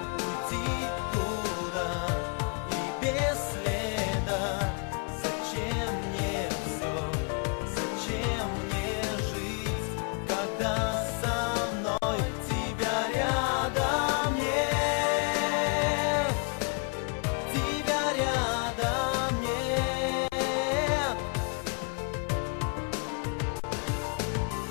уйти туда и без следа. Зачем мне все, зачем мне жить, когда со мной тебя рядом нет, тебя рядом нет.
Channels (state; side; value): quieter; right; 37.2 dB